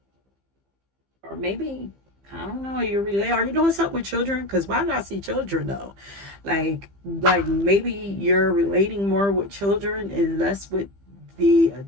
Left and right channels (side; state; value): left; late; 15 ms